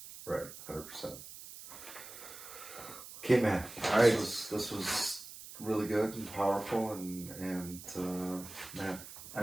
Right. 100%. Okay, man. All right. This was really good and powerful, and man, I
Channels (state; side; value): noise; right; hiss, 14 dB below the sound